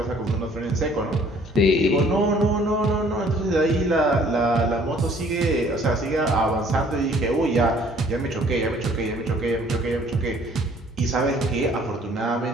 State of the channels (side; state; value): both; normal; correlation 0.58